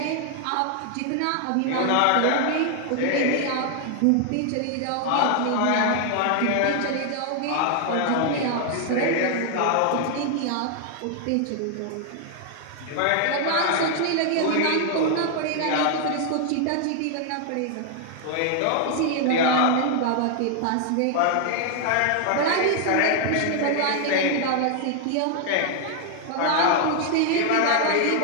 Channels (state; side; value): different; both; correlation 0.00